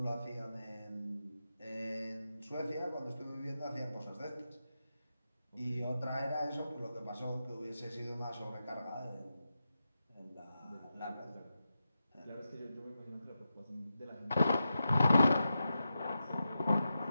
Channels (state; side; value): inverted; both; correlation -0.89